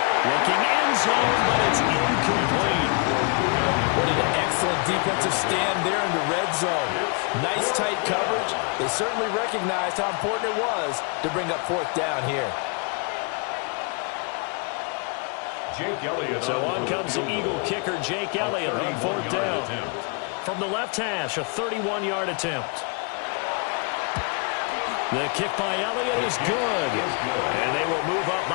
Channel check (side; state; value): right; quieter; 35.1 dB